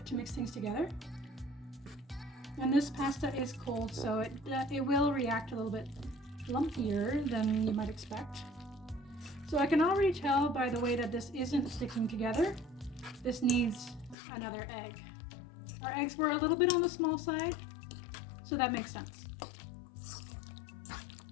to mix things together. And this pasta is cold, so it will react a little bit lumpier than you might expect. So I can already tell by the way that this isn't sticking together. This needs another egg. Our eggs were a little bit on the small side, so that makes sense.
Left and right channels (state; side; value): drops out; right; at 14.2 s